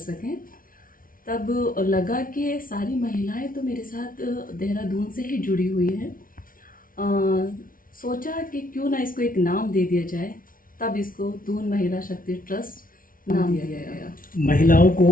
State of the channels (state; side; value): late; right; 0.40 ms